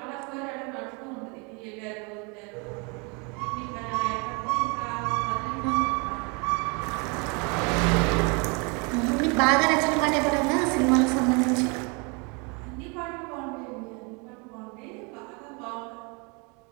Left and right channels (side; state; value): left; quieter; 31.7 dB